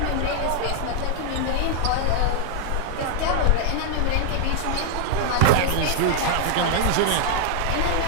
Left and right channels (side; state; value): both; different; correlation 0.00